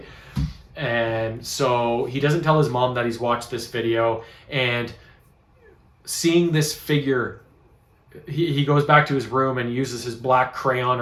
And so he doesn't tell his mom that he's watched this video, and seeing this figure, he goes back to his room and uses his black crayon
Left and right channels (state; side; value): identical; both; correlation 1.00